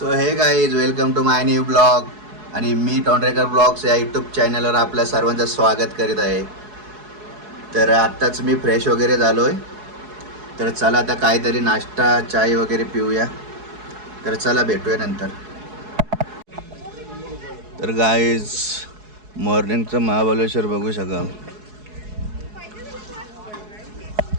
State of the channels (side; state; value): left; late; 4.7 ms